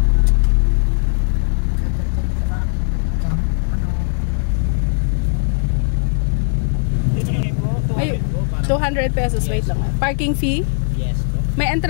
Ay, 200 pesos. Wait lang. Parking fee? Yes po. May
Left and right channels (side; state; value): right; silent; digital silence